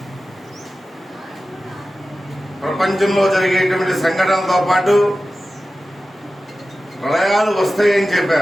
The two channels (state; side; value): normal; both; correlation 0.95